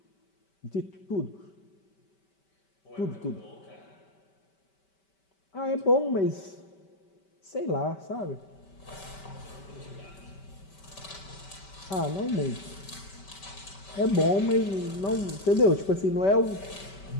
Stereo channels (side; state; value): right; late; 5.2 ms